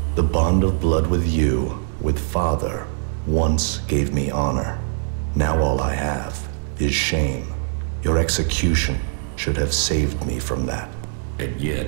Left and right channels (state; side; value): silent; left; 64 dB below the other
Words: The bond of blood with you, with Father, once gave me honor. Now all I have is shame. Your execution should have saved me from that. And